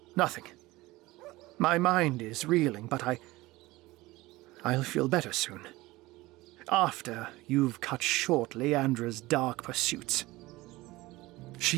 Nothing. My mind is reeling, but I'll feel better soon. After you've cut short Leandra's dark pursuits.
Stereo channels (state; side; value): quieter; left; 19.6 dB